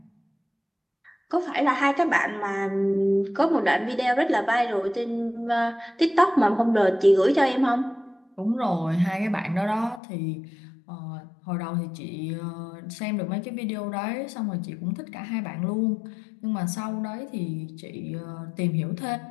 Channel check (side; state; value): right; drops out; at 10.0 s